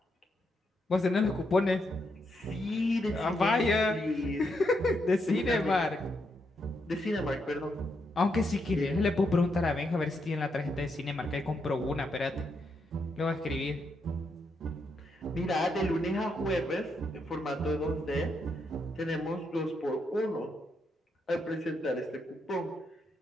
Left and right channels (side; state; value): both; normal; correlation 0.80